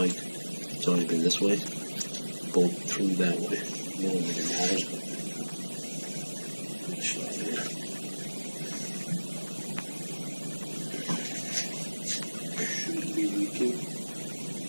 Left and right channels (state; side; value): inverted; both; correlation -1.00